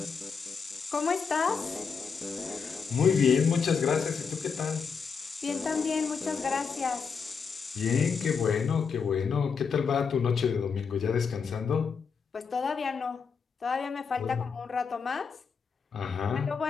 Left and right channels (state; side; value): quieter; right; 5.8 dB